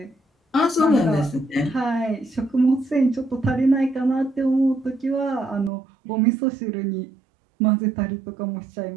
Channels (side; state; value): left; drops out; at 5.7 s